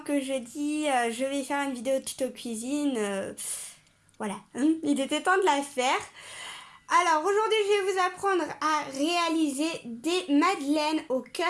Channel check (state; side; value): identical; both; correlation 1.00